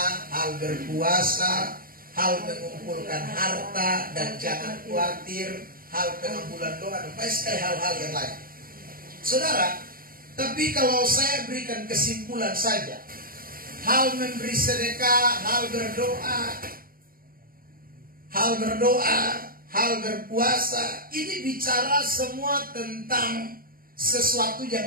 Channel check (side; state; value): left; late; 0.42 ms